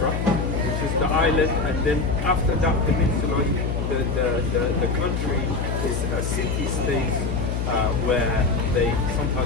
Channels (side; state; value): left; noise; hum, 1 dB below the sound